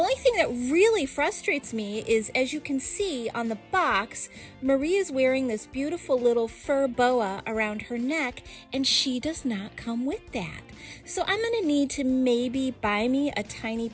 thing that really frustrates me is, as you can see on the box, Marie is wearing this beautiful little fur boa around her neck, and she does not come with that. So I'm going to need to maybe buy me a tiny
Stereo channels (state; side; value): identical; both; correlation 1.00